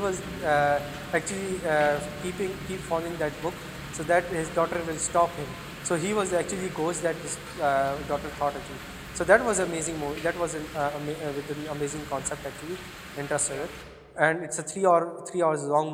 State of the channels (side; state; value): both; identical; correlation 1.00